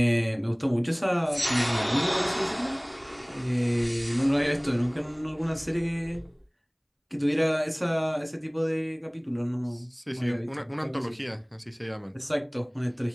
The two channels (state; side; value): identical; both; correlation 1.00